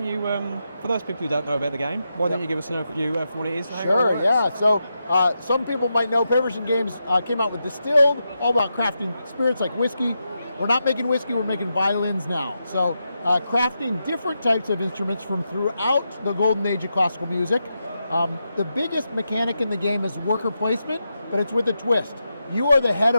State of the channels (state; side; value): inverted; both; correlation -0.86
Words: you, for those people who don't know about the game, why don't you give us an overview of what it is? Sure, yeah. So some people might know Paverson Games came out with Distilled, all about crafting spirits like whiskey. We're not making whiskey, we're making violins now. So crafting different types of instruments from throughout the golden age of classical music. The biggest mechanic in the game is worker placement, but it's with a twist. You are the head